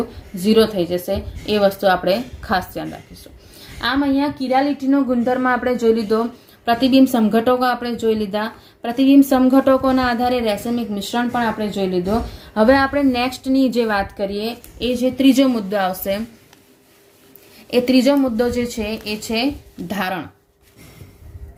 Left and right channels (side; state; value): both; identical; correlation 1.00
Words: 0 થઈ જશે. એ વસ્તુ આપણે ખાસ ધ્યાન રાખીશું. આમ અહીંયા કિરાલિટીનો ગુણધર્મ આપણે જોઈ લીધો, પ્રતિબિંબ સમઘટકો આપણે જોઈ લીધા, પ્રતિબિંબ સમઘટકોના આધારે રેસેમિક મિશ્રણ પણ આપણે જોઈ લીધો. હવે આપણે નેક્સ્ટની જે વાત કરીએ એ જે ત્રીજો મુદ્દો આવશે, એ ત્રીજો મુદ્દો જે છે એ છે ધારણ.